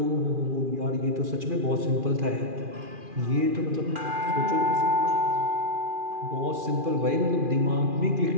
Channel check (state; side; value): late; left; 2.4 ms